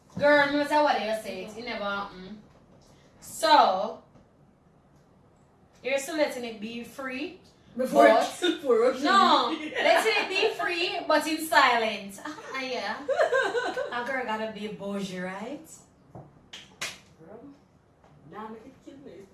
Girl, no matter what you say, it never happened. So, you're still letting it be free. Before no, letting it be free, but in silence. Yeah. A girl gotta be bougie, right? Now make it kill me.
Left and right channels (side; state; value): both; identical; correlation 1.00